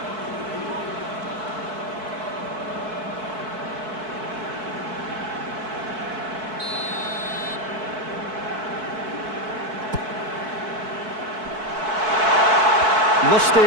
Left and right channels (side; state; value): left; late; 4.6 ms